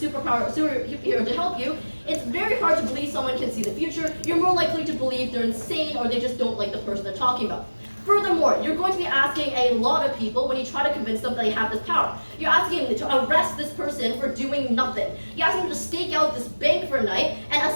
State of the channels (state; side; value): inverted; both; correlation -1.00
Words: superhero to help you, it's very hard to believe someone can see the future. You're more likely to believe they're insane or they just don't like the person they're talking about. Furthermore, you're going to be asking a lot of people when you try to convince them that they have this power. You're asking them to arrest this person for doing nothing. You're asking them to stake out this bank for a night and